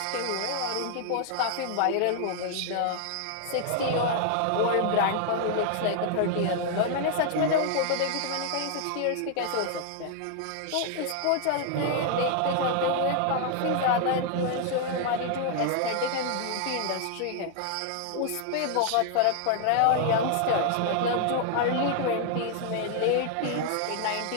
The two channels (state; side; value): different; both; correlation 0.00